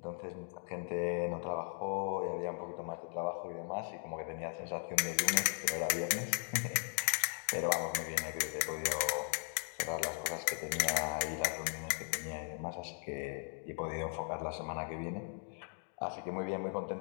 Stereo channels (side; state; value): right; silent; 53 dB below the other